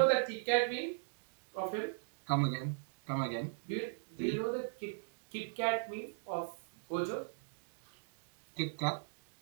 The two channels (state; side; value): silent; left; digital silence